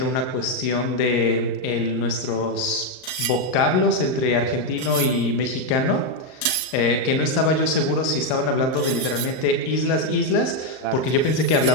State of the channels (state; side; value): late; right; 38 ms